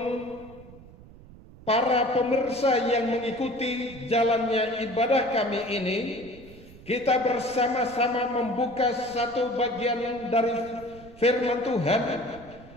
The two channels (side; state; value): right; noise; rumble, 20 dB below the sound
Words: para pemirsa yang mengikuti jalannya ibadah kami ini, kita bersama-sama membuka satu bagian dari firman Tuhan